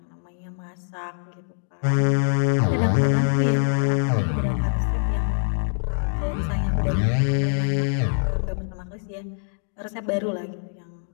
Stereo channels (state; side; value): silent; right; 62 dB below the other